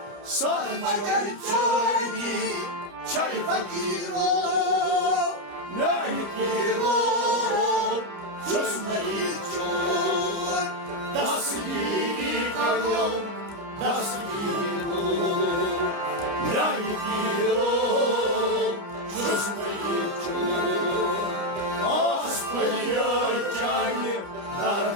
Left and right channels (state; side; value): late; left; 29 ms